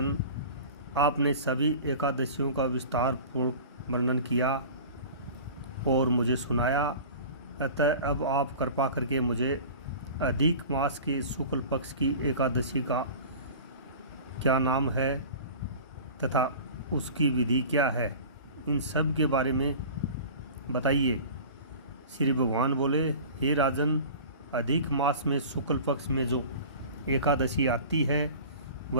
आपने सभी एकादशियों का विस्तार पूर्ण वर्णन किया और मुझे सुनाया, अतः अब आप कृपा करके मुझे अधिक मास के शुक्ल पक्ष की एकादशी का क्या नाम है तथा उसकी विधि क्या है, इन सब के बारे में बताइए। श्री भगवान बोले, हे राजन, अधिक मास में शुक्ल पक्ष में जो एकादशी आती है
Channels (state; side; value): inverted; both; correlation -0.38